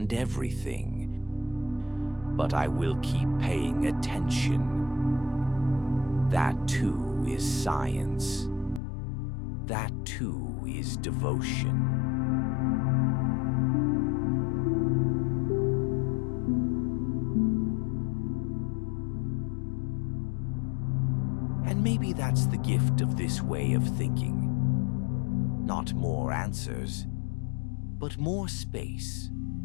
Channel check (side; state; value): right; drops out; at 8.8 s